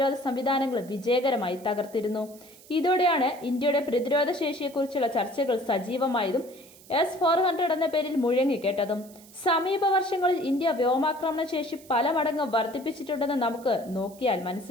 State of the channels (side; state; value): right; noise; hiss, 23 dB below the sound